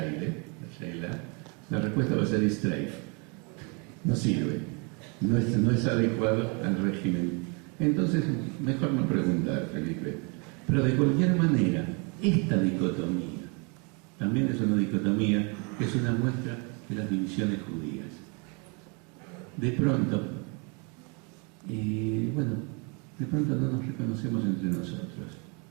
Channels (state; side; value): quieter; left; 33.4 dB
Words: la respuesta va a ser Streif. No sirve, no es adecuado al régimen. Entonces, mejor no preguntar, Felipe. Pero de cualquier manera, esta dicotomía también es una dicotomía, es una muestra de las divisiones judías. De pronto, de pronto no nos reconocemos entre nosotros.